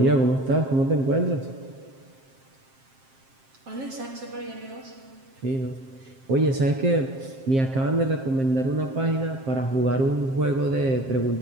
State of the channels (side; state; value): left; late; 7.6 ms